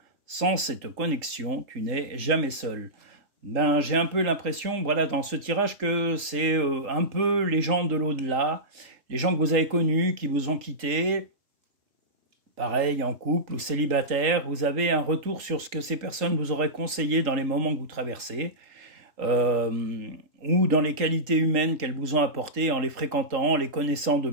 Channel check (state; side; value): late; left; 3.8 ms